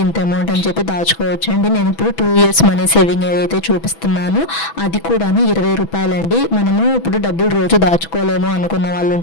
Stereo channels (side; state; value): right; late; 6.1 ms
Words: ఇంత అమౌంట్ అని చెప్పి దాచుకోవచ్చు అండి. నేను ఇప్పుడు 2 years మనీ సేవింగ్ ఐడియా అయితే చూపిస్తున్నాను. అది కూడా 20 రూపాయలండి. మనము ఇప్పుడు డబ్బులు రోజు దాచుకోలేము అనుకున్న వాళ్ళు